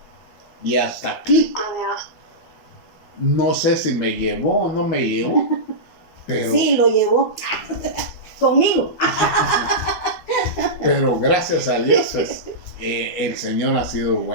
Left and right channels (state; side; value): late; right; 12 ms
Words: Y hasta aquí, no sé si me llevó o no me llevó, pero... Sí, lo llevó conmigo. Pero gracias a Dios, pues, el Señor ha sido